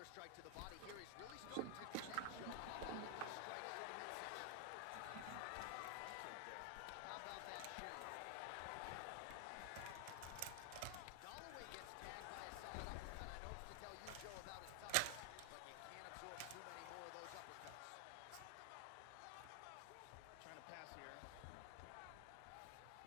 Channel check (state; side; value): different; both; correlation 0.00